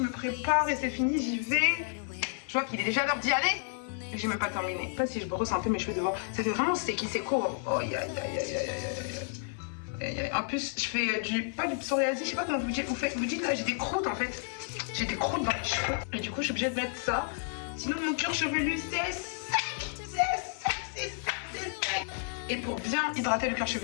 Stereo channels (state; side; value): silent; right; 57 dB below the other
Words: me prépare et c'est fini, j'y vais. Je vois qu'il est déjà l'heure d'y aller. Et j'ai même pas terminé. Je sais pas si je brosse un peu mes cheveux devant. Ça fait vraiment sticky, c'est court. Oh aïe aïe aïe aïe aïe aïe. En plus, je fais pas du psoriasis, je sais pas comment vous dites. Vous dites là, j'ai des croûtes en fait. J'ai des croûtes dans les cheveux. Et du coup, je suis obligée de mettre ça. Sinon, mon cuir chevelu, c'est sec. C'est sec. Et pour bien hydrater le cuir